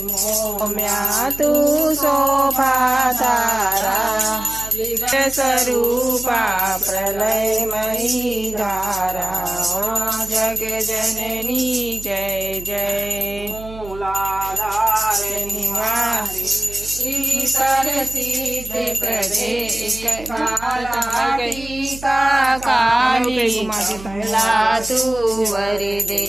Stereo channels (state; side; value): noise; right; hum, 15 dB below the sound